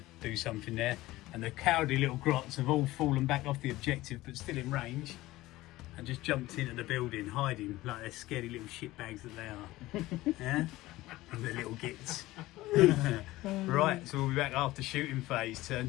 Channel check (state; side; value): quieter; right; 17.8 dB